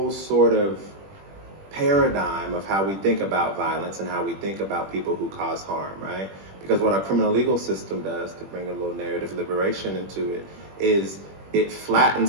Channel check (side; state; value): left; late; 21 ms